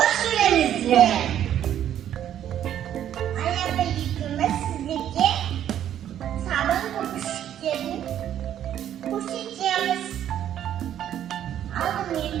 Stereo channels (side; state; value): left; quieter; 10.7 dB